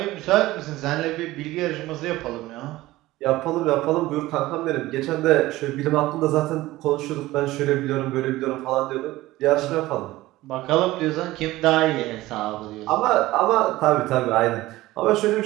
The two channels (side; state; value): left; quieter; 17.6 dB